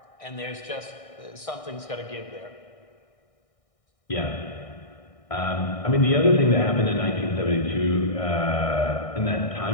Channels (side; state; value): right; late; 1.6 ms